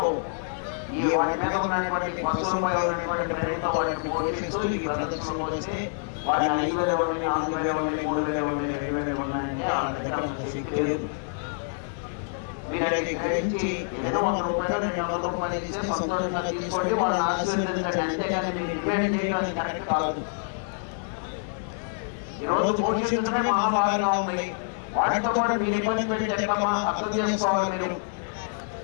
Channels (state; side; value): silent; right; digital silence